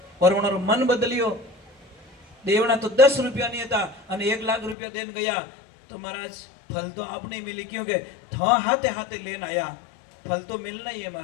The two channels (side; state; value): right; drops out; at 4.8 s